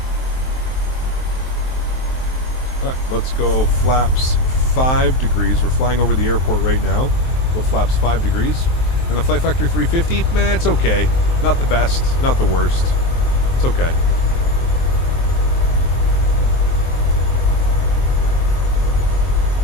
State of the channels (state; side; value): late; right; 23 ms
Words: Alright, let's go flaps 5 degrees. We're flying over the airport right now. Go flaps 5 degrees. And the Flight Factor 350, man, it's okay. Not the best, not the worst. It's okay.